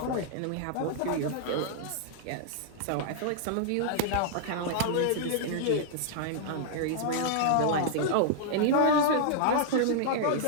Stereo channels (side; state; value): both; different; correlation -0.01